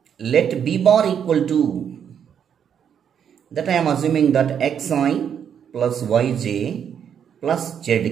Let B bar equal to, that I am assuming that xi plus yj plus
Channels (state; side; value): quieter; left; 8.2 dB